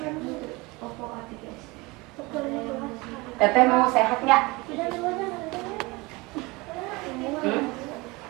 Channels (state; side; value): quieter; left; 24.1 dB